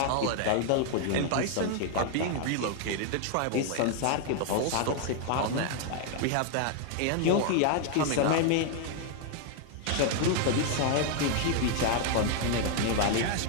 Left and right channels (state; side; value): different; both; correlation 0.00